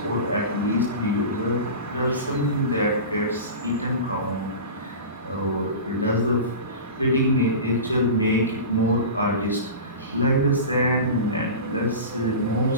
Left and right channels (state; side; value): inverted; both; correlation -0.31